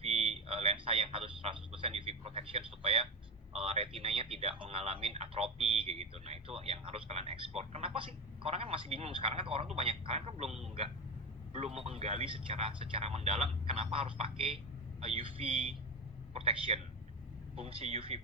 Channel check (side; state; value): both; normal; correlation 0.19